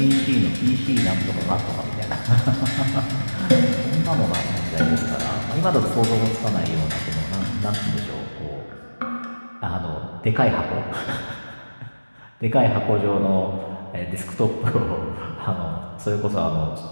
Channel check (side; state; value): both; inverted; correlation -1.00